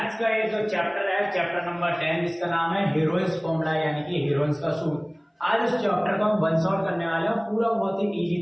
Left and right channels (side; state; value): both; identical; correlation 1.00